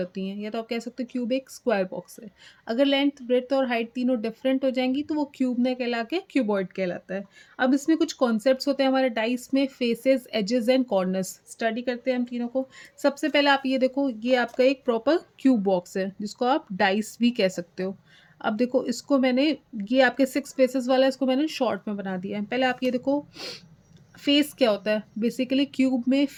हैं, या तो आप कह सकते हो क्यूब एक स्क्वायर बॉक्स है। अगर लेंथ, ब्रेड्थ और हाइट तीनों डिफरेंट हो जाएंगी तो वो क्यूब ने कहला के क्यूबॉइड कहलाता है। अब इसमें कुछ कॉन्सेप्ट्स होते हैं हमारे डाइस में, faces, edges and corners. Study करते हैं हम तीनों को। सबसे पहले आप ये देखो, ये आपका एक प्रॉपर क्यूब बॉक्स है जिसको आप डाइस भी कह सकते हो। अब देखो इसको मैंने, ये आपके 6 फेसेस वाला है, इसको मैंने शॉर्ट में बना दिया है। पहले आप ये देखो, फेस क्या होता है? बेसिकली क्यूब में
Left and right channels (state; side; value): identical; both; correlation 1.00